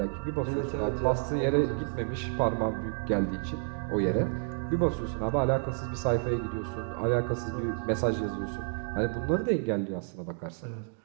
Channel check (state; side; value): silent; left; 58 dB below the other